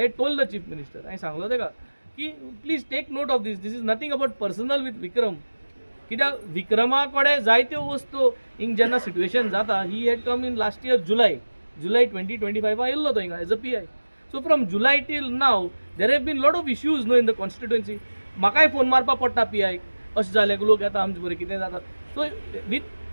had told the chief minister I सांगलो तेका की please take note of this is nothing about personal with Vikram कित्याक विक्रमा कडेन जायत्यो वस्तू हिंग जेन्ना सिट्युएशन जाता he had come in last year July 2025 येयल्लो तो हिंगा as a PI so from July till now there have been lot of issues no in the constituency म्हाकाय फोन मारपा पडटा PI अशें जालें लोक येता आमचे बरें कितें जाता so with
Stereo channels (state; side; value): inverted; both; correlation -1.00